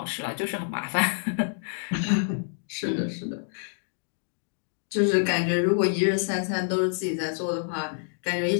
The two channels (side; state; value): right; silent; digital silence